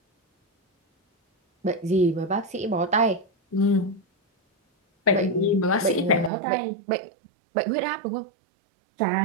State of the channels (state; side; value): drops out; left; at 6.3 s